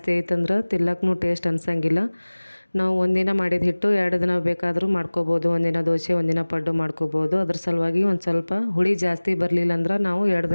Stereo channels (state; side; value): inverted; both; correlation -1.00